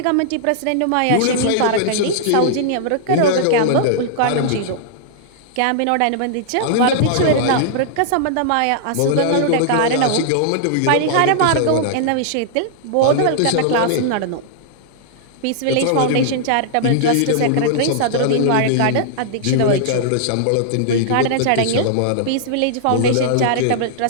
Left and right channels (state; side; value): different; both; correlation -0.01